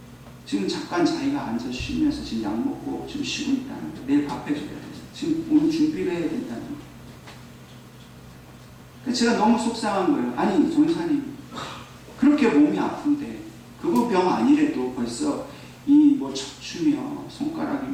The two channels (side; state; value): both; identical; correlation 1.00